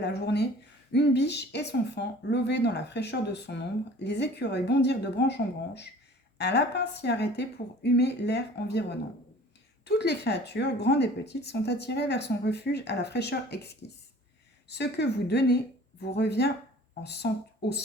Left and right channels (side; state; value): both; normal; correlation 0.47